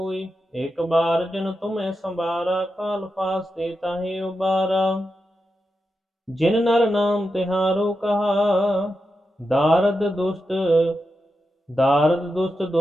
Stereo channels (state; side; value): normal; both; correlation 0.88